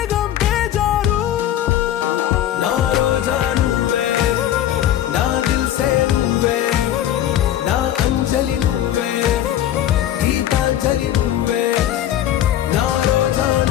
బేజారు నా రోజా నువ్వే నా దిల్సే నువ్వే నా అంజలి నువ్వే గీతాంజలి నువ్వే నా రోజా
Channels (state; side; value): quieter; right; 11.9 dB